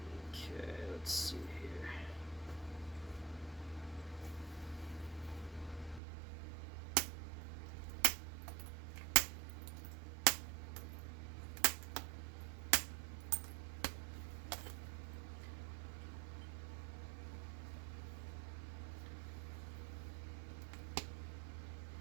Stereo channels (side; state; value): left; drops out; at 6.0 s